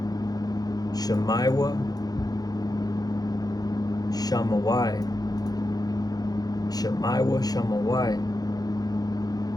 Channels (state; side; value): late; right; 0.19 ms